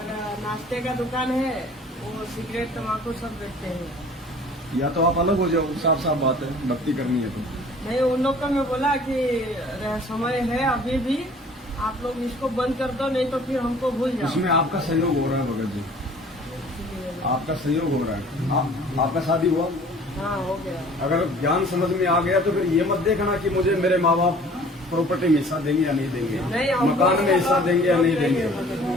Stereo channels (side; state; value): both; normal; correlation 0.50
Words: नाश्ते का दुकान है, वो सिगरेट तम्बाकू सब बेचते हैं। या तो आप अलग हो जाओ, साफ साफ बात है, भक्ति करनी है तो। नहीं, उन लोग का मैं बोला कि समय है अभी भी, आप लोग इसको बंद कर दो, नहीं तो फिर हमको भूल जाओ। इसमें आपका सहयोग हो रहा है भगत जी, आपका सहयोग हो रहा है। आपका शादी हुआ? हाँ, हो गया। अगर ज्ञान समझ में आ गया तो फिर ये मत देखना कि मुझे मेरे माँ बाप प्रॉपर्टी में हिस्सा देंगे या नहीं देंगे, नहीं, हमको मकान में हिस्सा देंगे या नहीं देंगे।